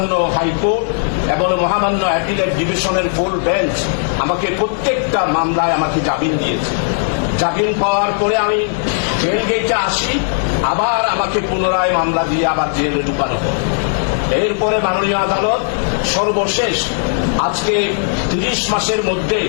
হাইকোর্ট এবং মহামান্য অ্যাপিলেট ডিভিশনের ফুল বেঞ্চ আমাকে প্রত্যেকটা মামলায় আমাকে জামিন দিয়েছে। জামিন পাওয়ার পরে আমি জেল গেটে আসি, আবার আমাকে পুনরায় মামলা দিয়ে আবার জেলে ঢুকানো হয়। এরপরে মাননীয় আদালত সর্বশেষ আজকে 30 মাসের মধ্যে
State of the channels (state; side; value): silent; right; 59 dB below the other